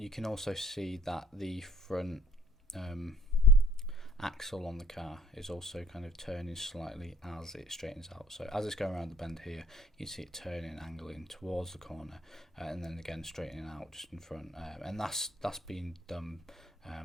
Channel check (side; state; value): both; normal; correlation 0.55